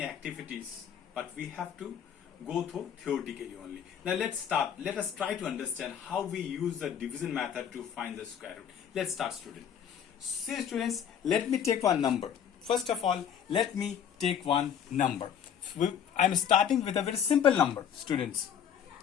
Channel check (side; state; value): right; quieter; 8.6 dB